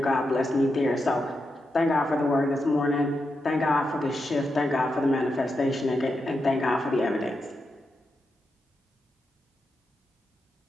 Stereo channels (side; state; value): both; normal; correlation 0.86